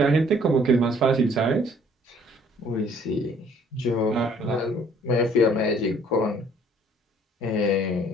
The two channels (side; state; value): both; normal; correlation 0.59